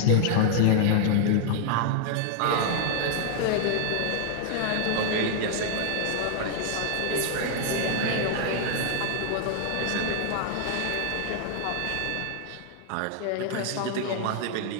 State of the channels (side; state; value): both; different; correlation -0.01